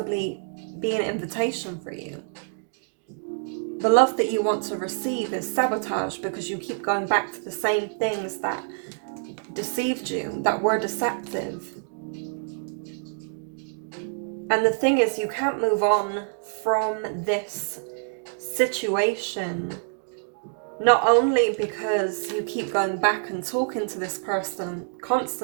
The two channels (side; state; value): left; silent; digital silence